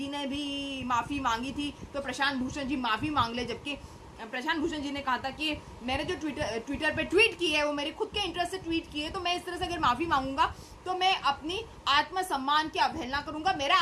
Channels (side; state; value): both; identical; correlation 1.00